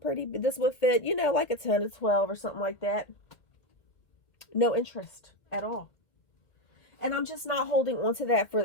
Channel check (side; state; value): right; late; 1.9 ms